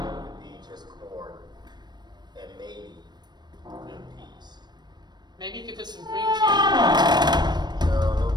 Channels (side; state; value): left; late; 0.21 ms